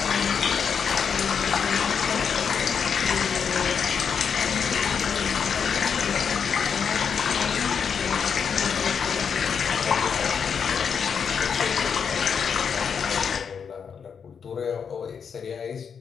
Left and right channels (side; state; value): right; quieter; 6.7 dB